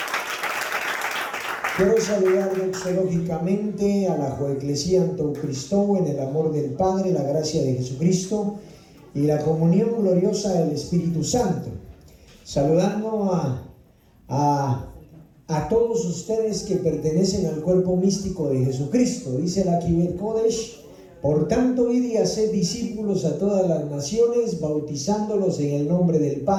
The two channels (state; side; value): identical; both; correlation 1.00